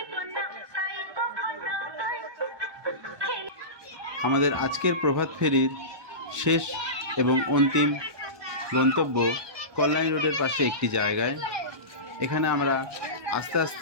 আমাদের আজকের প্রভাত ফেরির শেষ এবং অন্তিম গন্তব্য কল্যাণী রোডের পাশে একটি জায়গায়। এখানে আমরা আস্তে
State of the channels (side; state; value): left; late; 1.2 ms